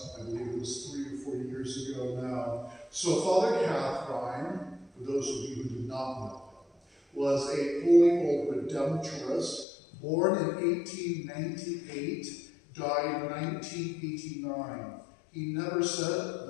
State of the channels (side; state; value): right; drops out; at 9.7 s